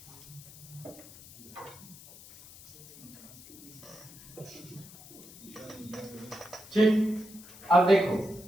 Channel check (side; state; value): left; noise; hiss, 19 dB below the sound